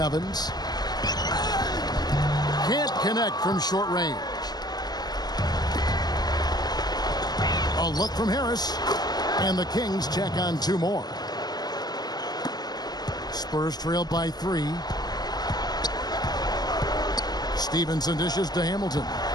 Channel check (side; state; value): right; late; 0.19 ms